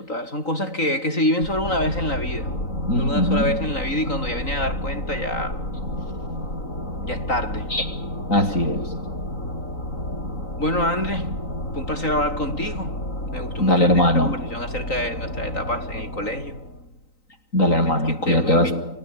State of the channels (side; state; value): right; late; 3.9 ms